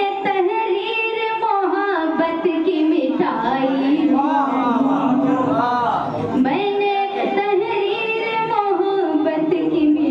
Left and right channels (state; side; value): identical; both; correlation 1.00